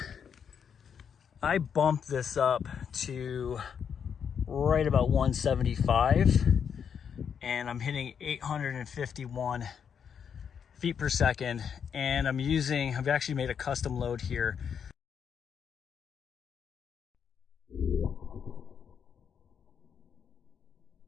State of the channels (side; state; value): right; quieter; 7.4 dB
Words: I bumped this up to right about 175, and I'm hitting 851 feet per second, and I've actually made a custom load here.